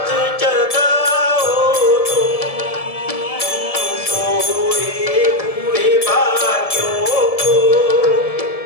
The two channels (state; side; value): late; right; 1.7 ms